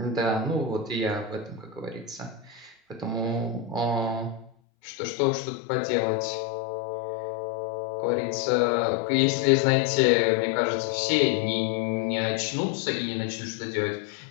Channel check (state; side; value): drops out; right; at 4.5 s